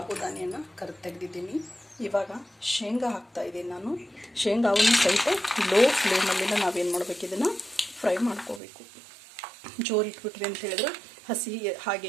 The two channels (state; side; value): drops out; left; at 8.6 s